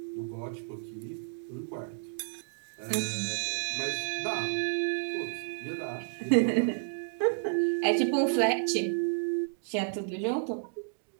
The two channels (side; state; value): left; silent; digital silence